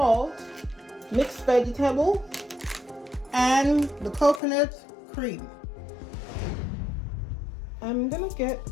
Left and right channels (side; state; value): right; drops out; at 4.4 s